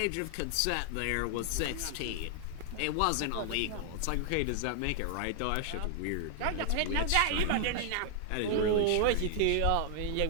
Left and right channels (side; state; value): both; different; correlation 0.00